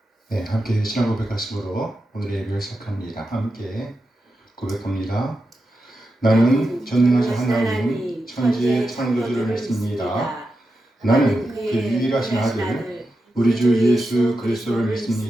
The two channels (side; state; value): both; normal; correlation 0.89